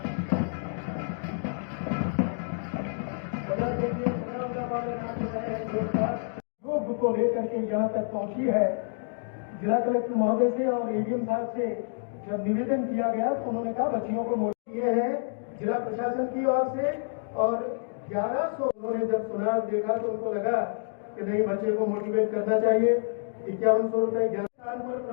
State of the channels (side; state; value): right; silent; digital silence